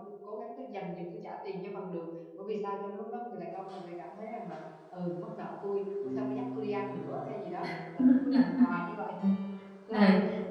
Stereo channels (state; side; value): identical; both; correlation 1.00